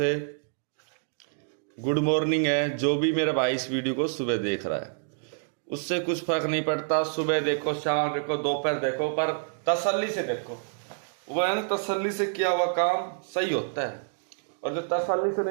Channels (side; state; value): left; silent; digital silence